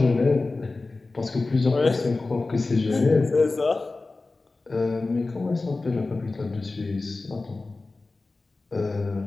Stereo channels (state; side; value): quieter; right; 3.5 dB